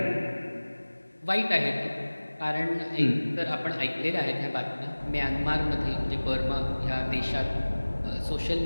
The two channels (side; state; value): both; inverted; correlation -1.00